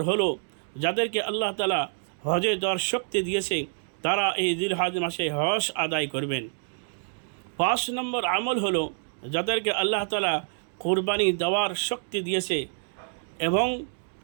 হলো, যাদেরকে আল্লাহ তাআলা হজে যাওয়ার শক্তি দিয়েছে তারা এই জিলহজ মাসে হজ আদায় করবেন। 5 নম্বর আমল হলো, যাদেরকে আল্লাহ তাআলা কুরবানি দেওয়ার শক্তি দিয়েছে এবং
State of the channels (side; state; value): left; silent; digital silence